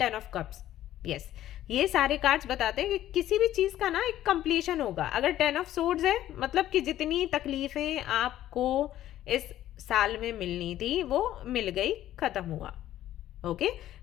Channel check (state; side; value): quieter; right; 13.0 dB